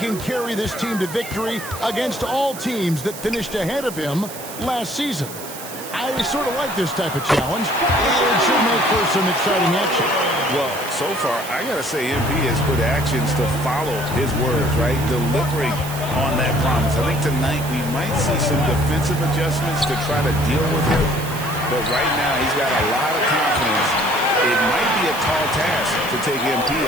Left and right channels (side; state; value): right; noise; hiss, 12 dB below the sound